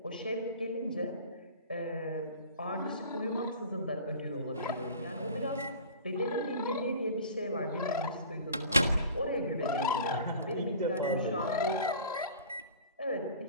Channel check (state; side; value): inverted; both; correlation -0.41